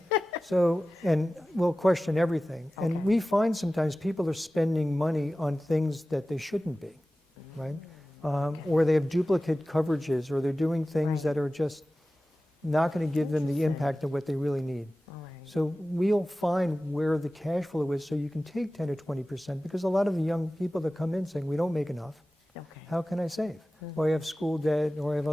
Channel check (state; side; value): normal; both; correlation 0.96